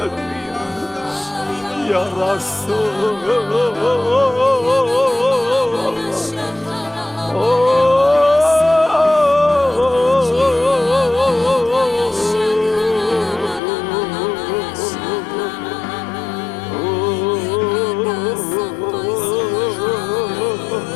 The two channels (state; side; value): drops out; right; at 13.6 s